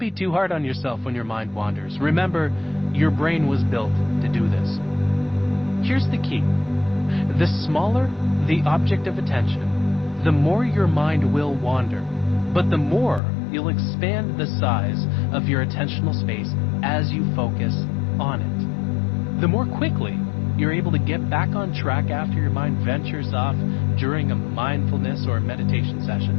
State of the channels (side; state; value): right; drops out; at 13.2 s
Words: too hard on yourself when your mind wanders. Remember, your brain was built to do this. Here's the key. The smaller the object of attention, the more your mind will wander, but the more you'll expand the size of your attentional space as you focus on it. The more quickly you're able to get back on track after your mind ventures off during a mindfulness or meditation